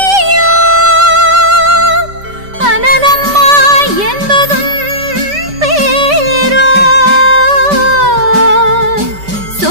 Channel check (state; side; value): late; left; 5.1 ms